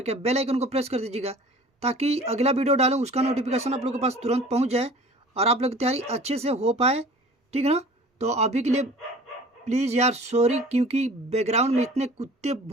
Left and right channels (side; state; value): both; normal; correlation 0.45